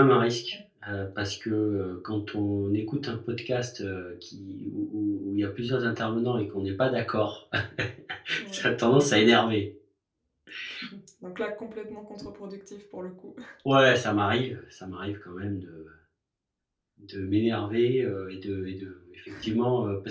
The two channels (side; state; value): both; identical; correlation 1.00